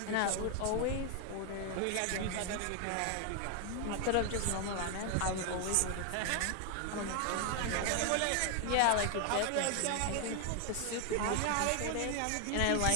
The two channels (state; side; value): different; both; correlation 0.00